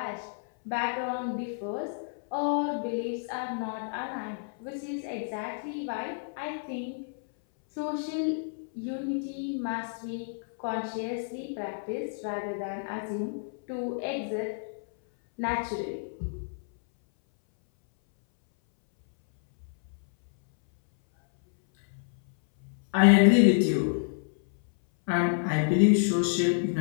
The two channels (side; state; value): right; silent; 58 dB below the other